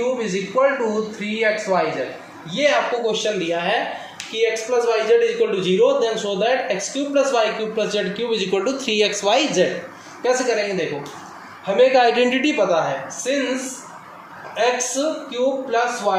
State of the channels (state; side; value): identical; both; correlation 1.00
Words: is equal to 3xyz। ये आपको क्वेश्चन दिया है कि x plus y z is equal to 0 then show that x cube plus Y cube plus Z cube is equal to 3xyz। कैसे करेंगे, देखो हमें एक आइडेंटिटी पता है, since x cube plus